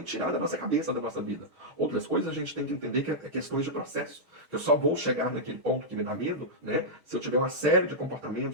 tirar da nossa cabeça, da nossa vida. Outras coisas a gente tem que entender que é questões de processo. Eu só vou chegar naquele ponto que me dá medo, né? Se eu tiver uma série de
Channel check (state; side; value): late; left; 6.4 ms